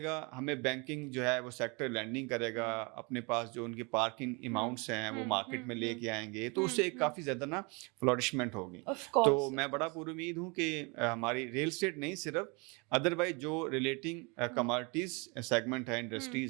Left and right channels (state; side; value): quieter; left; 30.0 dB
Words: گا, ہمیں بینکنگ جو ہے وہ سیکٹر لینڈنگ کرے گا, اپنے پاس جو ان کے پارکنگ اماؤنٹس ہیں وہ مارکیٹ میں لے کے آئیں گے, تو اس سے ایک کافی زیادہ نا فلورشمنٹ ہوگی. تو میں بڑا پر امید ہوں کہ ہماری ریل اسٹیٹ نہیں صرف, ادروائز جو ریلیٹنگ کموڈٹیز سیگمنٹ ہے,